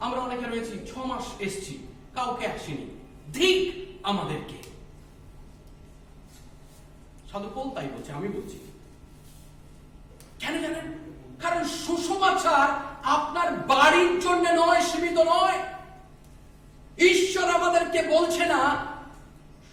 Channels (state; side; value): identical; both; correlation 1.00